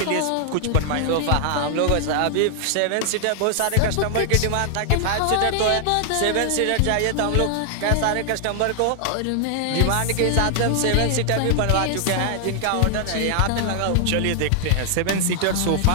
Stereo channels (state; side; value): different; both; correlation 0.00